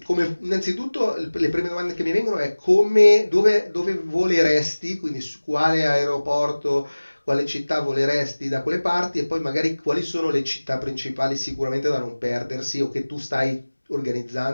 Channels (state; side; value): inverted; both; correlation -1.00